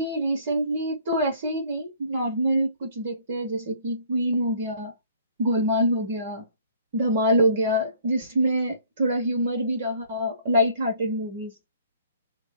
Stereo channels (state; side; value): inverted; both; correlation -0.58